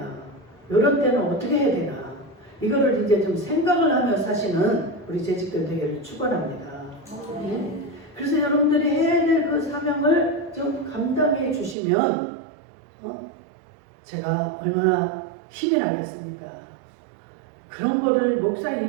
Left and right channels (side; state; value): left; drops out; at 11.8 s